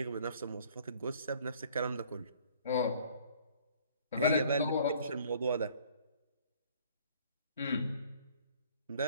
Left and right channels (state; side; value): inverted; both; correlation -0.56